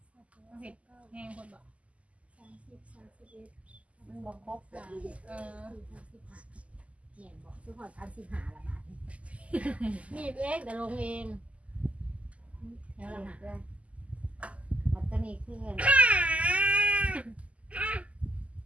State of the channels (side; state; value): left; late; 0.065 ms